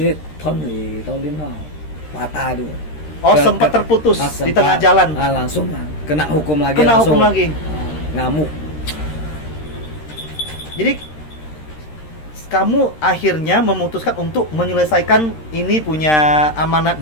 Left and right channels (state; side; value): late; right; 13 ms